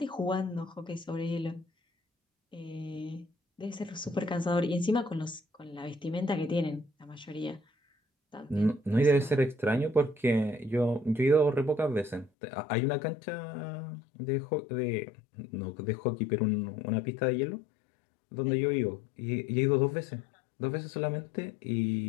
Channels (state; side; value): drops out; right; at 12.3 s